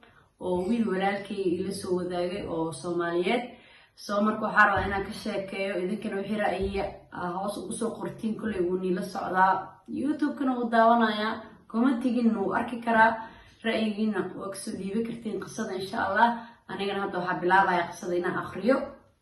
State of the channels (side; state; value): both; identical; correlation 1.00